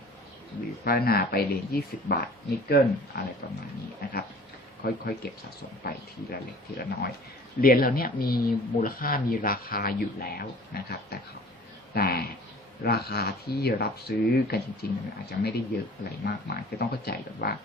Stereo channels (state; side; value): normal; both; correlation 0.47